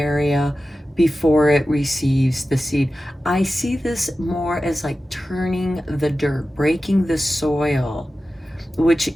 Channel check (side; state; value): both; normal; correlation 0.94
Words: before it receives the seed. I see this more as like turning the dirt, breaking the soil, which